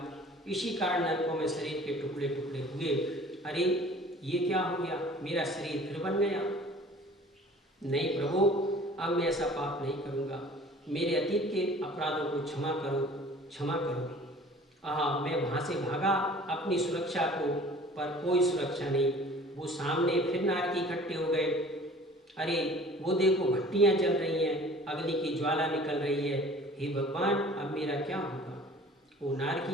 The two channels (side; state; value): both; normal; correlation 0.48